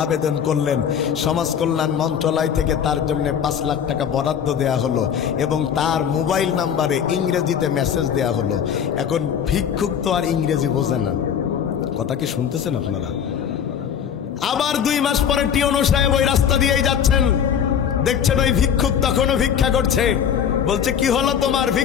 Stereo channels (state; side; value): quieter; right; 8.3 dB